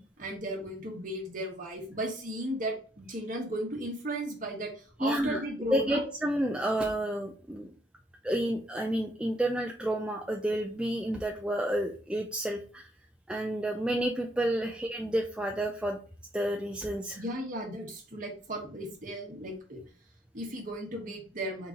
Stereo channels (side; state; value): both; normal; correlation 0.71